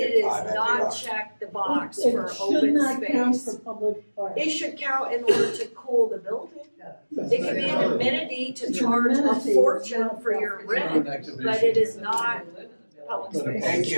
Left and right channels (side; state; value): both; inverted; correlation -1.00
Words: is not check the box for open should not count space. for public parks. It should count in order to cool the building. It can be an amenity to charge a fortune for your rent, but it is not public space. Thank